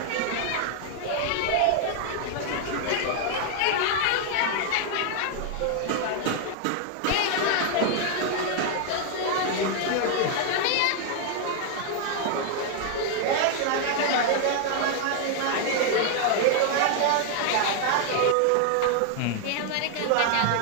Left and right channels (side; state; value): both; different; correlation 0.00